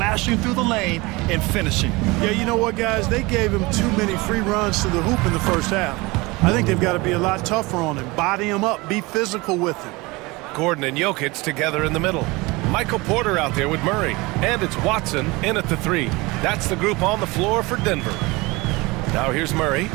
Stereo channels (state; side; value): quieter; left; 23.6 dB